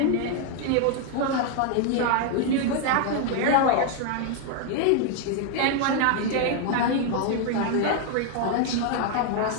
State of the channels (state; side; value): different; both; correlation 0.00